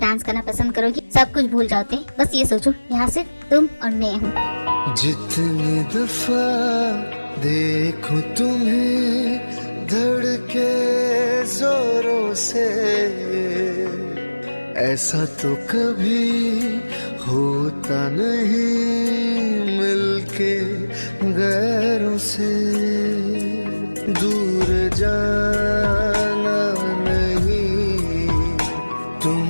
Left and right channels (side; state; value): both; inverted; correlation -1.00